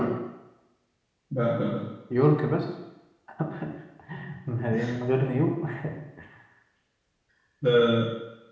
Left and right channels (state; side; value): identical; both; correlation 1.00